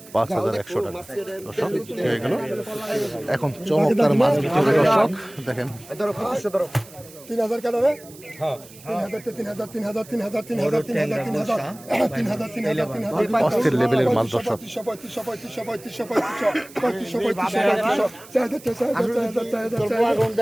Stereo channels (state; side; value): noise; right; hiss, 20 dB below the sound